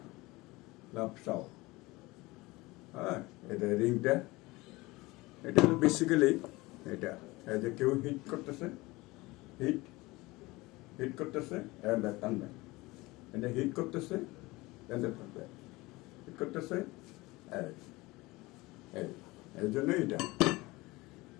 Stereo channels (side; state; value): right; quieter; 21.5 dB